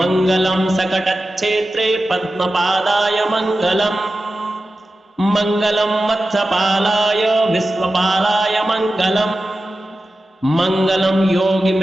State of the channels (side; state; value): both; normal; correlation 0.93